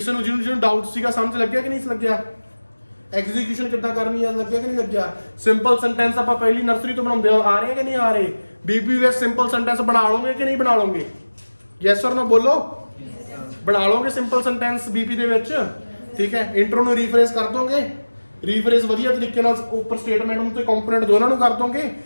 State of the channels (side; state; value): both; inverted; correlation -1.00